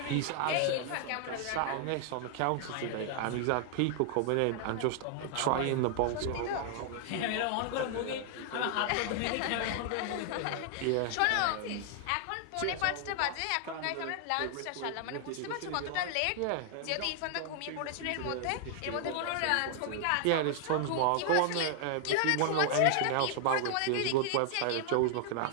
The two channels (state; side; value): different; both; correlation 0.00